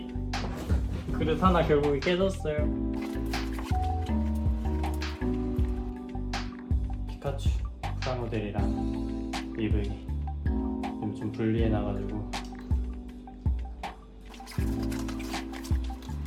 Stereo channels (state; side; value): identical; both; correlation 1.00